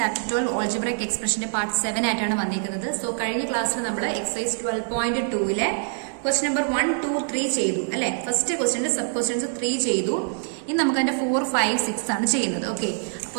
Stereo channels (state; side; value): silent; left; 61 dB below the other